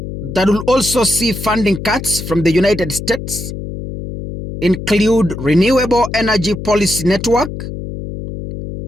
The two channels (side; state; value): left; noise; hum, 8 dB below the sound